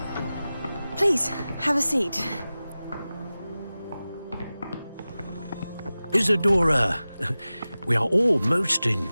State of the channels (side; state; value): both; inverted; correlation -0.96